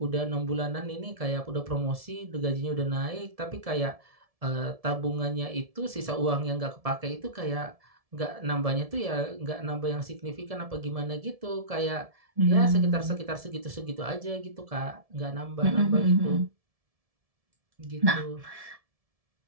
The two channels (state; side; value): late; left; 1.7 ms